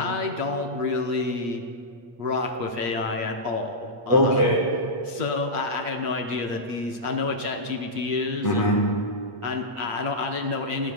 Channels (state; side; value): late; left; 8.5 ms